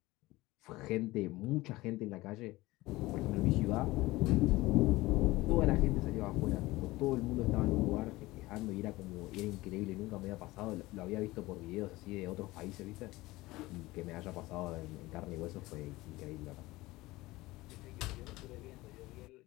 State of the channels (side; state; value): right; quieter; 19.5 dB